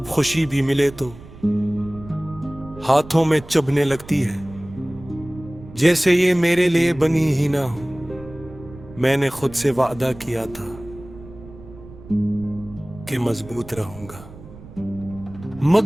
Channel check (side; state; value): right; noise; rumble, 18 dB below the sound